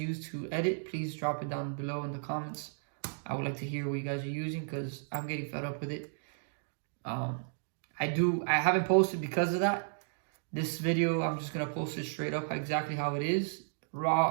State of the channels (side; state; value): left; silent; digital silence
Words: to edit, please drop it down below in the comments. I would like to hear what you guys are using because I'm getting fed up with it. I haven't posted because of that. This video, I'm just gonna post it straight up exactly how it is,